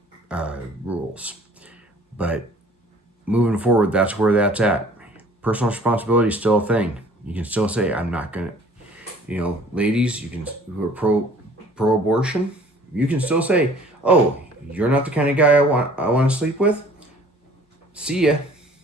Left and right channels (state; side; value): normal; both; correlation 0.52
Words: rules. But moving forward, that's where that's at. Personal responsibility is still a thing. You can still say, I'm not going to, ladies, who are pro-abortion, you can still say, oh, you're not the kind of guy I want to sleep with? See ya.